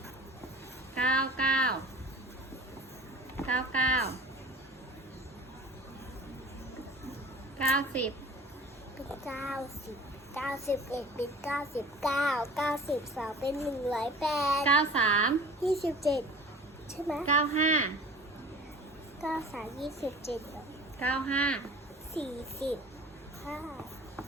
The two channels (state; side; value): normal; both; correlation 0.43